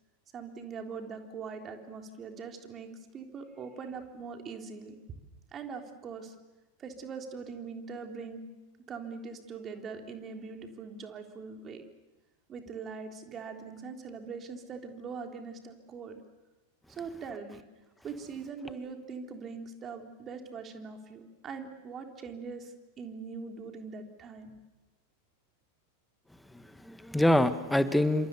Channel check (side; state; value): both; normal; correlation 0.81